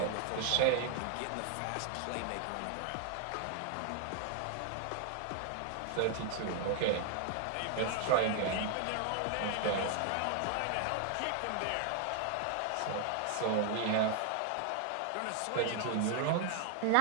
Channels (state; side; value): different; both; correlation 0.00